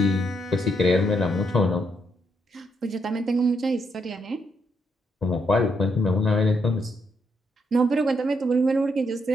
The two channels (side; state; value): both; normal; correlation 0.77